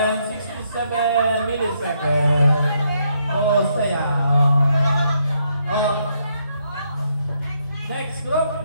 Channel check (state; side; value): inverted; both; correlation -0.75